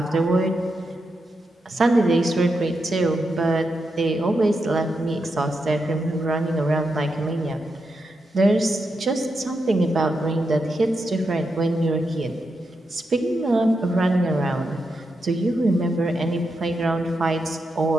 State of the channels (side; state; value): both; normal; correlation 0.85